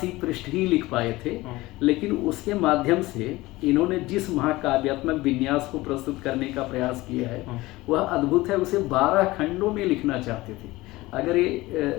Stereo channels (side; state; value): right; quieter; 19.5 dB